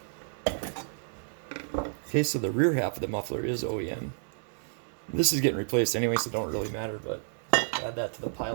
Okay, so the rear half of the muffler is OEM. This is getting replaced anyway, so it don't really matter, but add that to the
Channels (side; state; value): left; silent; digital silence